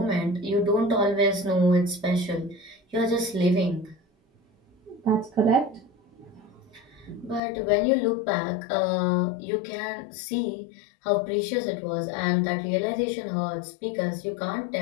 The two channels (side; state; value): right; drops out; at 7.4 s